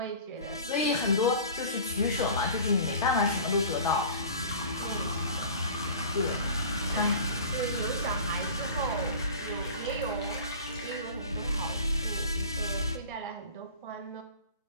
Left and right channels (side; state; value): both; inverted; correlation -0.40